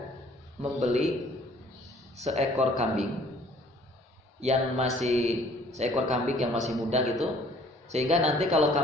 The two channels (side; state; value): both; normal; correlation 0.57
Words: membeli seekor kambing yang masih muda gitu, sehingga nanti kalau